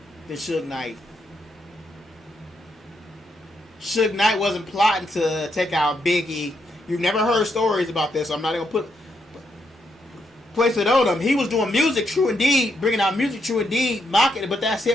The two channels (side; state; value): both; normal; correlation 0.79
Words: than Suge Knight. Suge Knight wasn't plotting to take out Biggie. You've never heard stories about this, so I'm not going to place it on him. He was doing music, true indeed, bringing out music, true indeed, mocking it, but that's